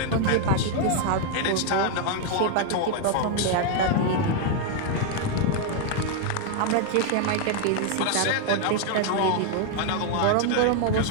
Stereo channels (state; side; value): different; both; correlation 0.00